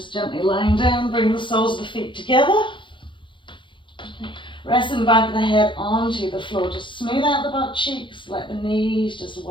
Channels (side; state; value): right; late; 0.24 ms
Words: gently lying down, bring the soles of the feet together. Resting the back of the head onto the floor, just smooth out the butt cheeks, let the knees just